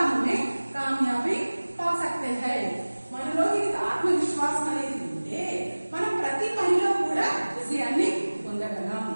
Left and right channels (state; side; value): inverted; both; correlation -1.00